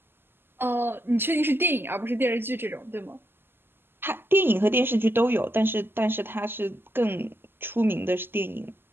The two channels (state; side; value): late; left; 0.10 ms